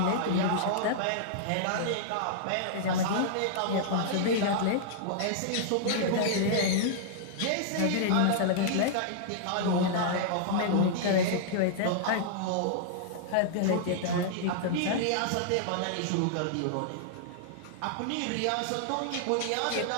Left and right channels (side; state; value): both; different; correlation -0.01